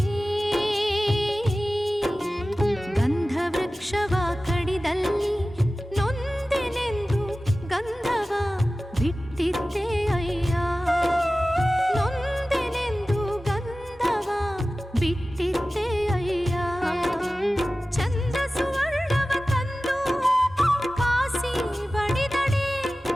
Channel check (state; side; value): normal; both; correlation 0.96